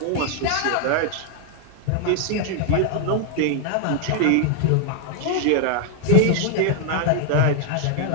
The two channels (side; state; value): both; different; correlation 0.00